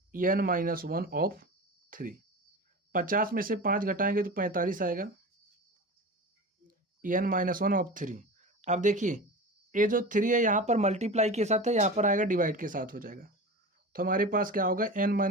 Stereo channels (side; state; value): both; normal; correlation 0.30